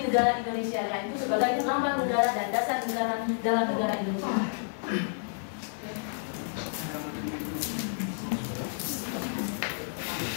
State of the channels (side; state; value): right; silent; digital silence